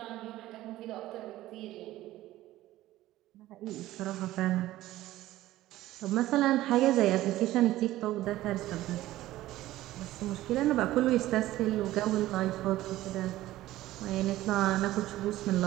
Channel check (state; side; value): quieter; left; 15.6 dB